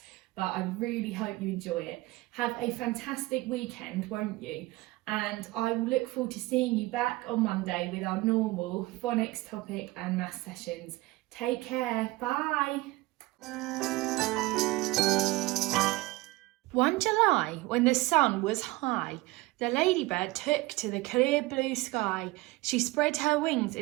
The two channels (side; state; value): left; quieter; 20.8 dB